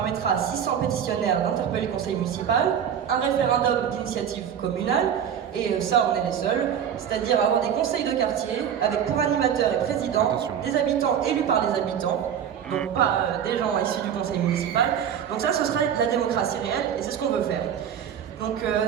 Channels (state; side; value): quieter; left; 8.7 dB